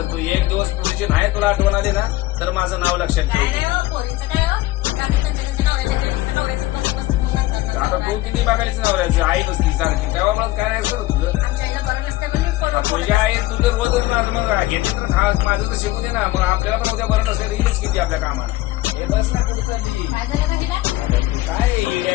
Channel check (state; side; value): quieter; right; 17.3 dB